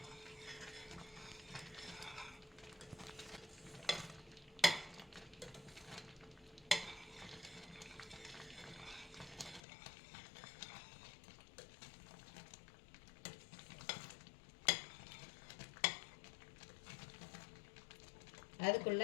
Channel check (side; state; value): right; drops out; at 9.6 s